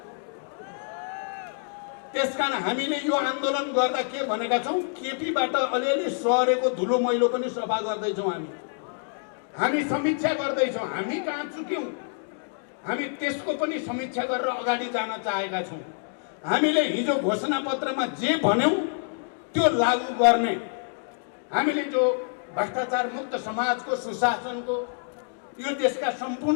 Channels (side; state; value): right; silent; 60 dB below the other